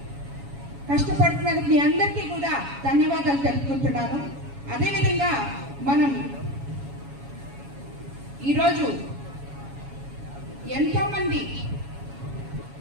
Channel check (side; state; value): left; late; 7.2 ms